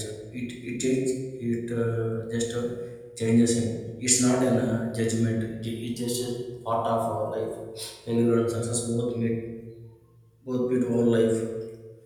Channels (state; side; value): identical; both; correlation 1.00